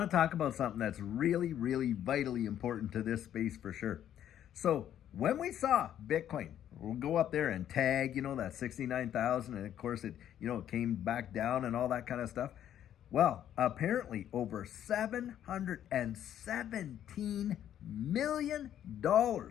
to talk about something that's really, really vitally important to this space for sure. So when we saw Bitcoin, we'll go up there and tag, that 69,000, and of course it came back down and all that kind of stuff. Well, apparently over $717 million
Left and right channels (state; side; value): quieter; right; 10.6 dB